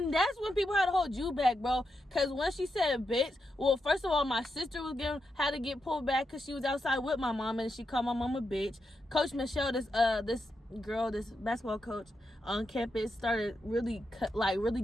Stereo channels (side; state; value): both; normal; correlation 0.85